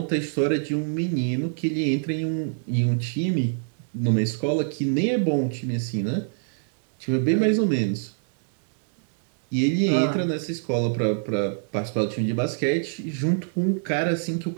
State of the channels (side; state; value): left; silent; digital silence